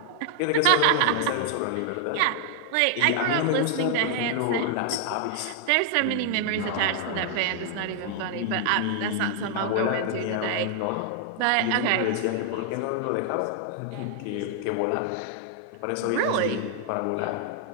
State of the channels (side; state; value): both; different; correlation 0.00